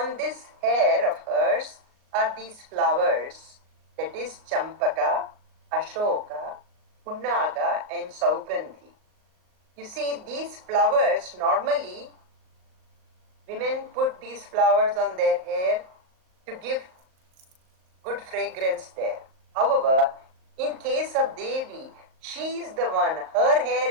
this hair of hers are these flowers, that is Champaka, Ashoka, Punnaga and Saugandhi. You see, these flowers, normally women put these flowers on their hair to give good fragrance there. However, in case of Devi, she is the one, her hair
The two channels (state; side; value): late; left; 38 ms